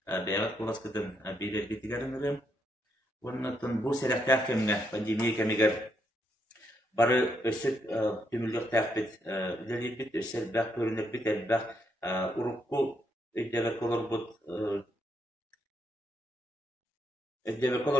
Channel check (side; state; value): both; normal; correlation 0.77